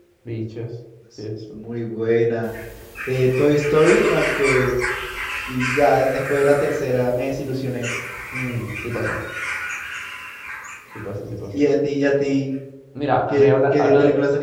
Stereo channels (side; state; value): both; identical; correlation 1.00